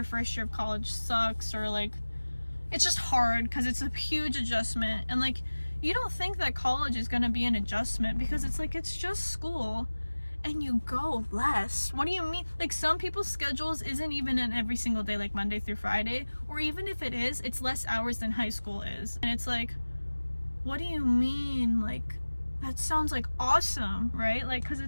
first year of college sucks, or like it's just hard because it's a huge adjustment. And like you don't think that college is going to be an adjustment because it's like it's just school and you go less. What do you mean? Like some people's schedules isn't even in every single day, like Monday through Friday, or even if it is, it's less hours than high school is. And it's like, what do you mean? Like that sounds like awesome, right? Like because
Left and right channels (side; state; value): both; inverted; correlation -1.00